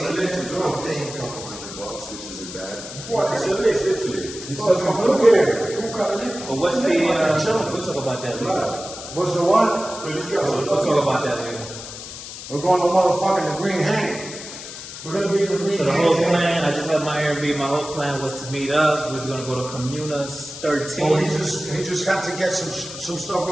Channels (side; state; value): left; noise; hiss, 11 dB below the sound